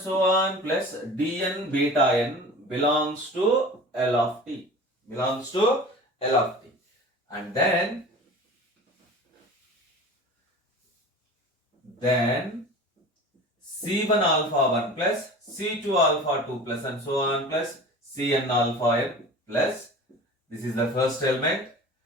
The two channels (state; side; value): normal; both; correlation 0.38